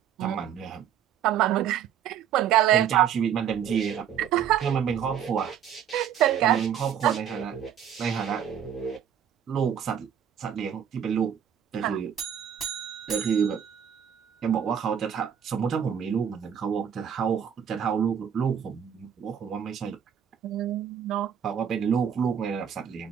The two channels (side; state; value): left; quieter; 8.8 dB